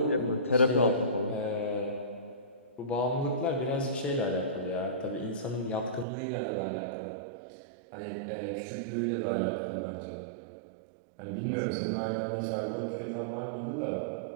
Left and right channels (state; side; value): drops out; left; at 6.1 s